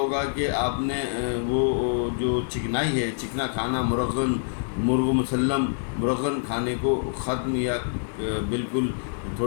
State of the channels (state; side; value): silent; right; digital silence